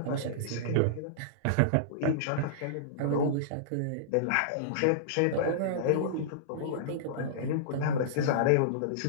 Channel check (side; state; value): both; different; correlation -0.03